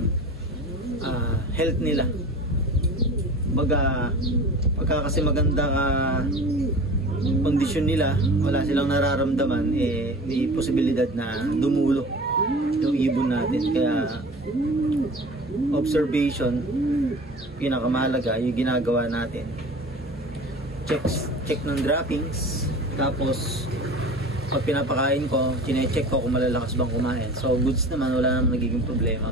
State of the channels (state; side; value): normal; both; correlation 0.38